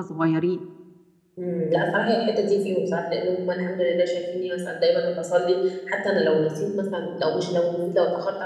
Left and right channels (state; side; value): identical; both; correlation 1.00